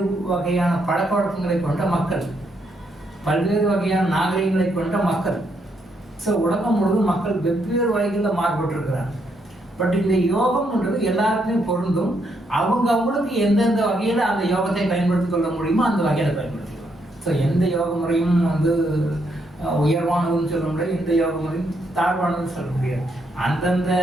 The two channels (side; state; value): both; normal; correlation 0.76